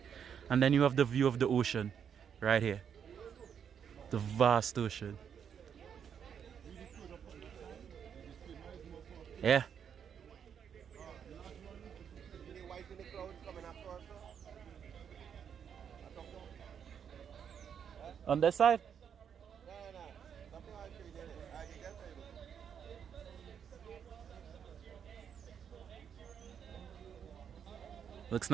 And then you have the view of the ocean right here. The vast ocean. Yeah. On this side? Looks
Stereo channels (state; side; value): quieter; left; 7.8 dB